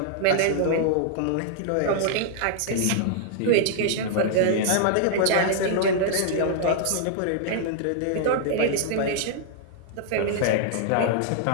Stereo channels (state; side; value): different; both; correlation -0.01